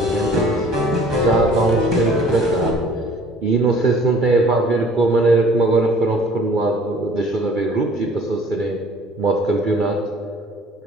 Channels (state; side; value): normal; both; correlation 0.53